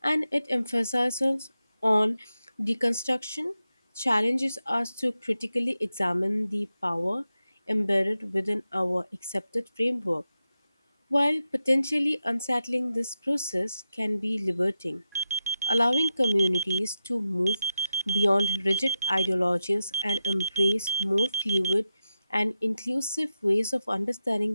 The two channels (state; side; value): inverted; both; correlation -0.90